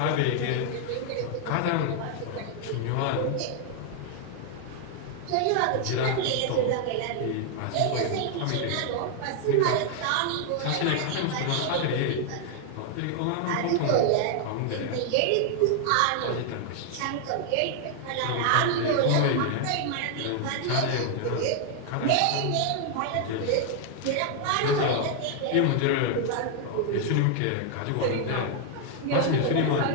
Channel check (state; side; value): different; both; correlation 0.00